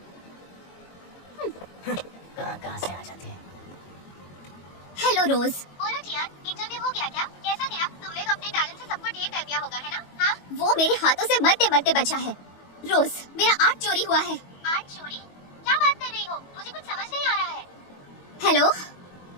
कहाँ से आ जाते हैं? हेलो रोज। बोलो टियान, इंटरव्यू हो गया क्या? कैसा गया? तुमने तो अपने टैलेंट से सबको ढेर कर दिया होगा, है ना? हाँ? वो मेरे हाथों से मरते मरते बचा है। रोज, मेरा आर्ट चोरी हुआ है। आर्ट चोरी? क्या बात कर रही हो? मुझे कुछ समझ नहीं आ रहा है। हेलो,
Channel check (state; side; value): late; right; 22 ms